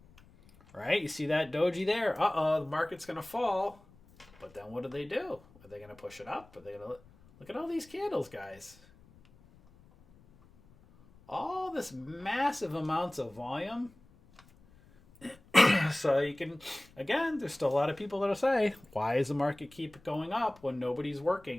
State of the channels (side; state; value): left; noise; rumble, 26 dB below the sound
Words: Right, you see that doji there? Uh-oh, the market's going to fall. But then what do? Are they going to push it up? Are they going to look at all these candles, guys? All this massive amounts of volume. So you can, again, there's still a lot of people that'll say, why does the market keep going up when nobody's